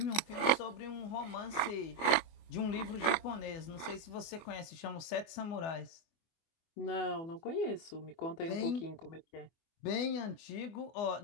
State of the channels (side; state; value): right; late; 24 ms